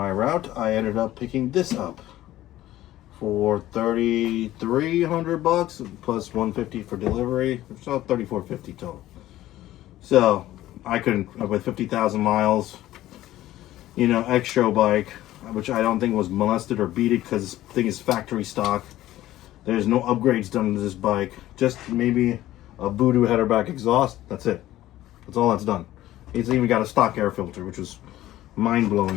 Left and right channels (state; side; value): quieter; right; 14.7 dB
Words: route, I ended up picking this up for $3,300 plus $150 for delivery. So $3,450 total. So I couldn't, with 50,000 miles, you know, extra bike, which I don't think was molested or beaten because this thing is factory stock. There's no upgrades done to this bike. Just maybe a Voodoo header back exhaust. That's it. That's all that's done. It's even got a stock air filter, which was